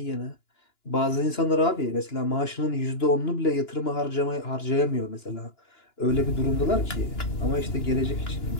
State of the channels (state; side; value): late; right; 2.9 ms